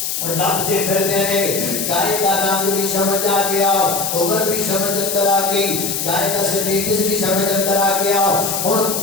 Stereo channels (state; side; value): noise; left; hiss, 2 dB below the sound